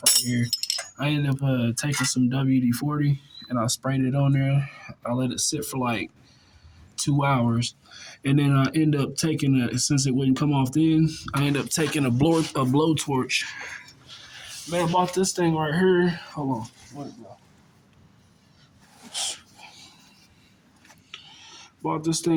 right here. I ended up taking some WD-40 and I sprayed it on there. I let it sit for like 2 hours. And then I end up taking since it wouldn't come off then, I end up taking a blowtorch. Man, I bought this thing right here. Hold on. Where'd it go? Bought this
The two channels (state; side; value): identical; both; correlation 1.00